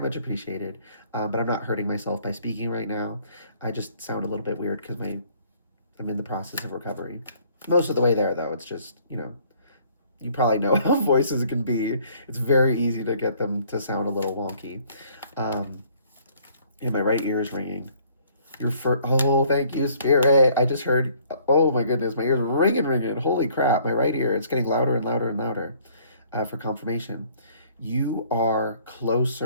appreciated. But I'm not hurting myself by speaking right now. I just sound a little bit weird because I'm in the process of recovery. Most of the way there, though. It's just, you probably know how voices can be. It's very easy to get them to sound a little wonky. Um, and my right ear is ringing. Oh, thank you, Spirit. I just heard, oh my goodness, my ears ringing. Holy crap, my right ear, it's getting louder and louder and louder for confirmation. You are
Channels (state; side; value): inverted; both; correlation -0.60